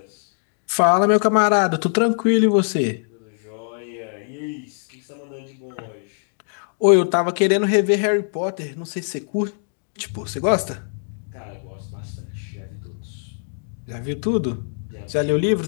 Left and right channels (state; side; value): silent; right; digital silence